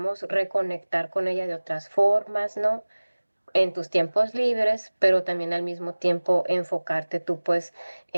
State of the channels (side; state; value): both; inverted; correlation -1.00